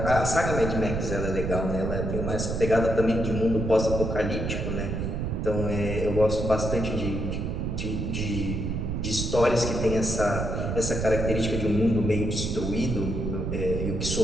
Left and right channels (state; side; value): noise; right; rumble, 2 dB below the sound